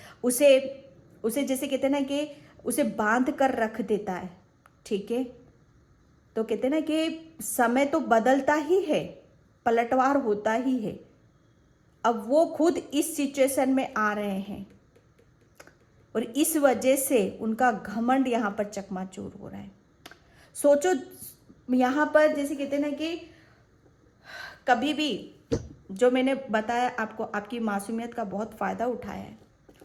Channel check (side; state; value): both; identical; correlation 1.00